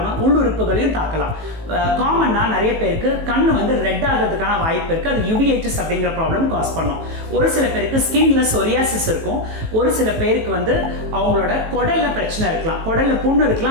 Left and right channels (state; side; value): late; left; 18 ms